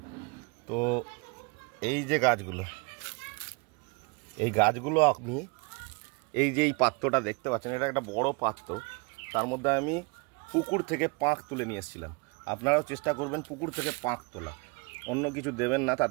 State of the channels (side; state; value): left; quieter; 30.0 dB